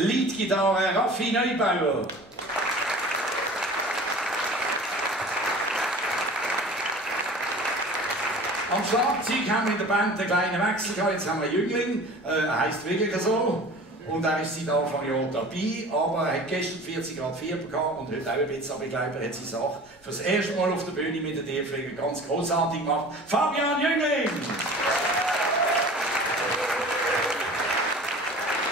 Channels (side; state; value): both; normal; correlation 0.41